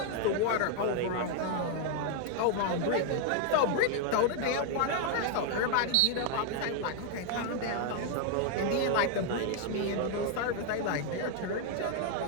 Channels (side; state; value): both; different; correlation 0.00